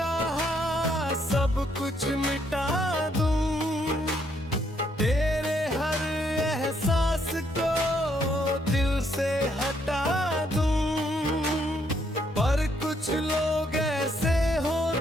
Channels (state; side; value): normal; both; correlation 0.72